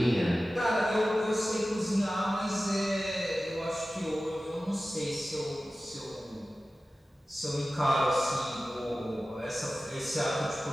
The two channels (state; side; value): normal; both; correlation 0.95